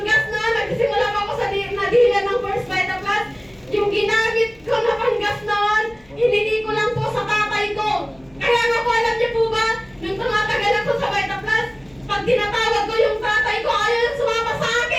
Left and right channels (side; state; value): left; noise; hum, 30 dB below the sound